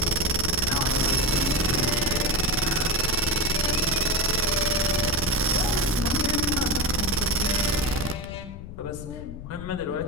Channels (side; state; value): left; noise; rumble, 11 dB below the sound